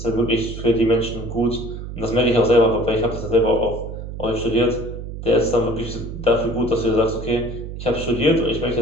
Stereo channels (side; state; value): right; noise; hum, 9 dB below the sound